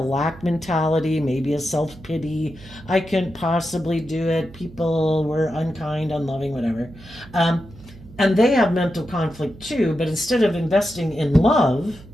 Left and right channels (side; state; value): right; noise; hum, 20 dB below the sound